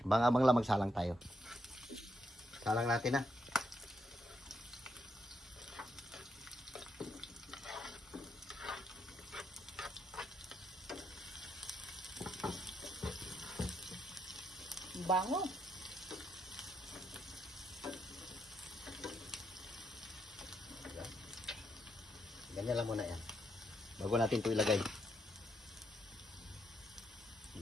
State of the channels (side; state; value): both; normal; correlation 0.79